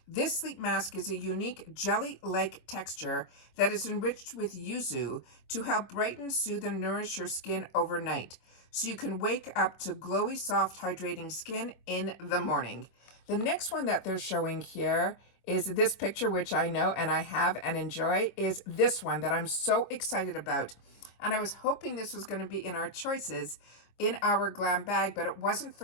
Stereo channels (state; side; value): late; right; 25 ms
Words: This sleep mask is a unique jelly-like texture that is enriched with yuzu to help brighten, soothe, and nourish your skin overnight, so you can wake up to glowy, soft, hydrating skin in the morning. The next one that they're showing here is this picture, which I know and I have and enjoy, is this one that I'm so excited about. And I was hoping this was going to be in our choices in our glam bag, but it wasn't for